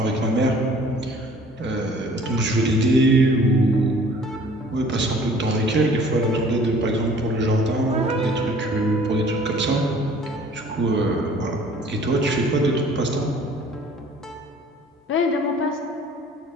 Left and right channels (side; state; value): both; normal; correlation 0.52